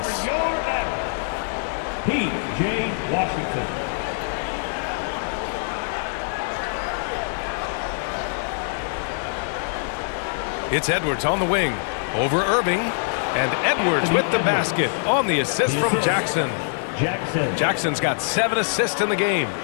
P.J. Washington. It's Edwards on the wing. Over Irving. And Edwards with the basket on the assist from Jackson. Jackson's got 7 assists in the game.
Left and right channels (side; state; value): right; silent; digital silence